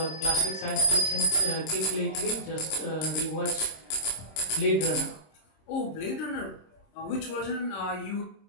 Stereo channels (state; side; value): late; right; 26 ms